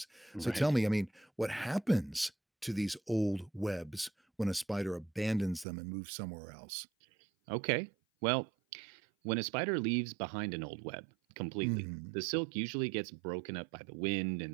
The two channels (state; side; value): drops out; left; at 5.7 s